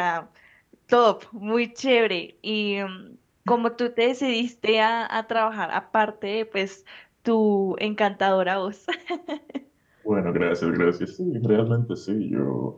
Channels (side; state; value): both; identical; correlation 1.00